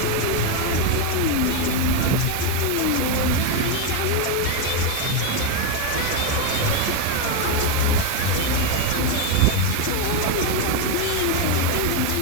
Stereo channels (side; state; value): both; different; correlation 0.02